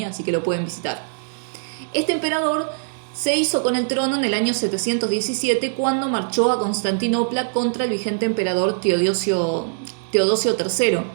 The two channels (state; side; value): silent; left; digital silence